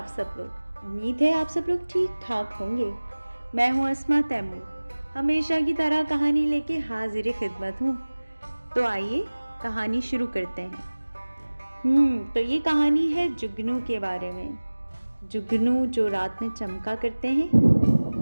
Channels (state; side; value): inverted; both; correlation -1.00